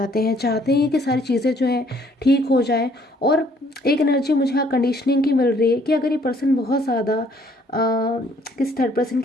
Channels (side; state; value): both; normal; correlation 0.63